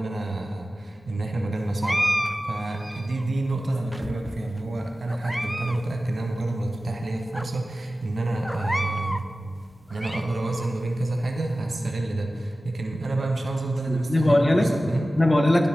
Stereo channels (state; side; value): normal; both; correlation 0.95